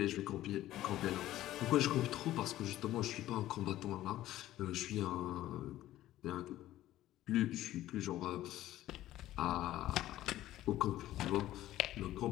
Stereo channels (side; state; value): right; quieter; 14.3 dB